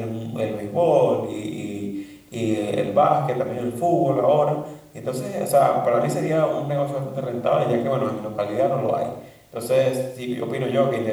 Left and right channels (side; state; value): both; identical; correlation 1.00